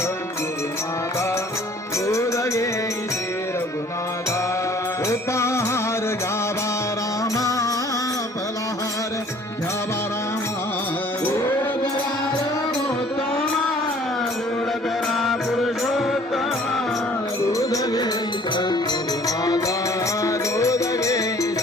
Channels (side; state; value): both; normal; correlation 0.54